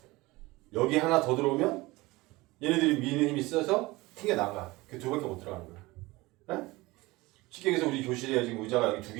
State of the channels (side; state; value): left; quieter; 21.2 dB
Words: 여기 하나 더 들어오면 얘네들이 미는 힘이 세서 튕겨 나가. 그 2개밖에 못 들어가는 거야. 에? 쉽게 얘기해서 우리 교실에 지금 의자가 여기 2개